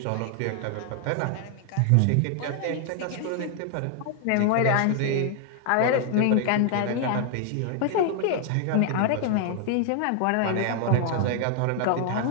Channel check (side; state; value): both; different; correlation 0.00